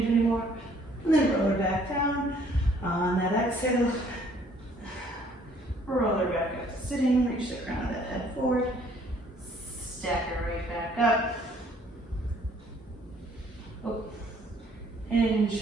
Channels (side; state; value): both; normal; correlation 0.60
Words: anymore, and then roll her back down. On that exhale, roll her back up to sitting, reach the crown of the head forward, stack it right back up. Oh, hinge,